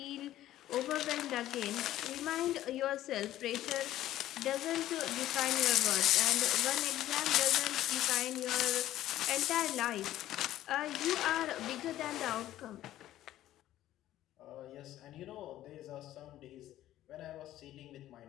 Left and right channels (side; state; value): right; quieter; 13.7 dB